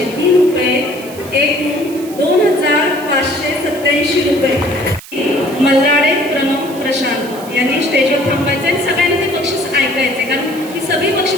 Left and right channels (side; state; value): right; noise; hiss, 17 dB below the sound